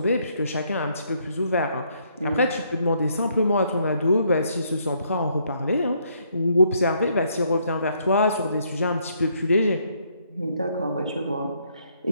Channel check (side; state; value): both; inverted; correlation -0.70